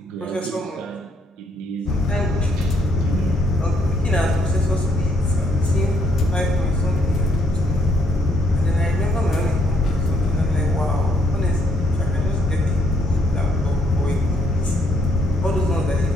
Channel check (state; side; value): normal; both; correlation 0.71